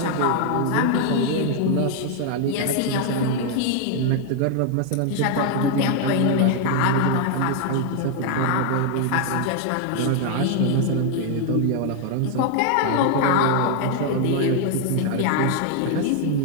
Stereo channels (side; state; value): both; different; correlation 0.00